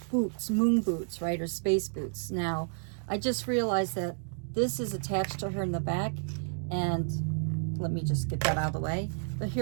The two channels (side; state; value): left; silent; digital silence